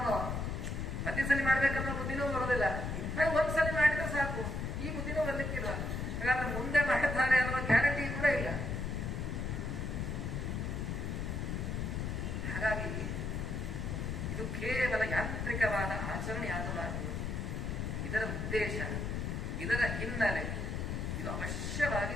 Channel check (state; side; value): noise; left; rumble, 2 dB below the sound